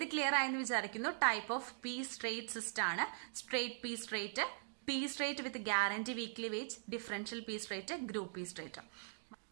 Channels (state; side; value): silent; left; digital silence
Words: ക്ലിയർ ആയെന്ന് വിചാരിക്കുന്നു. Type of piece rate system ആണ് straight piece rate, piece rate with guarantee weekly wage, differential piece rate, group piece rate.